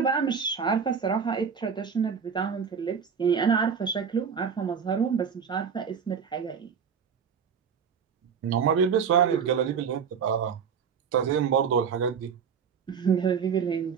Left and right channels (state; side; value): quieter; left; 6.7 dB